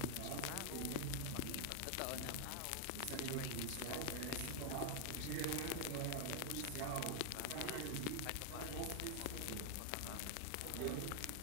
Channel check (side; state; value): both; different; correlation 0.00